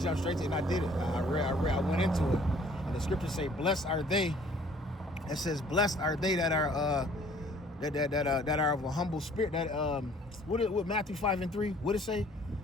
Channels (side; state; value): both; normal; correlation 0.56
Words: straight to it, and I did it. I went into it. And the scriptures say, blessed are they. It says, blessed are they that are that are of a humble spirit. That what Matthew 5:3, what it say?